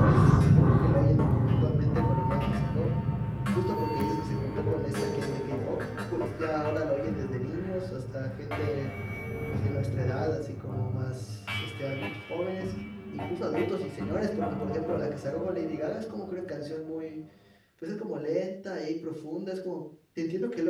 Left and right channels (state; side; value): identical; both; correlation 1.00